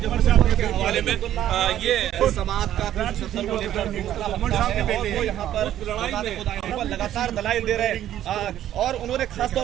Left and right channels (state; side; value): quieter; left; 11.9 dB